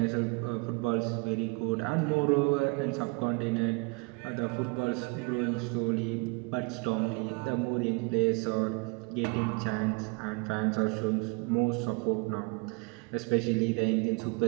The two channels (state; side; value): quieter; left; 30.4 dB